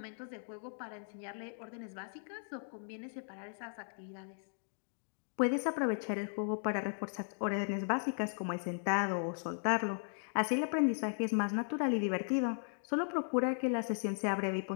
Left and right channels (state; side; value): silent; right; digital silence